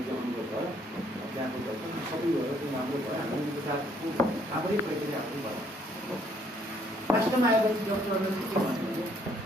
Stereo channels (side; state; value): both; normal; correlation 0.66